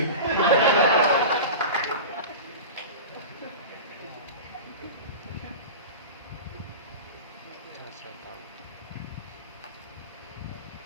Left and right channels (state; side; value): inverted; both; correlation -0.30